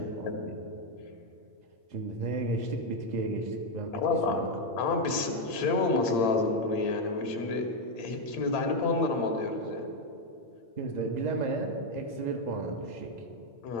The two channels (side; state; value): right; late; 8.8 ms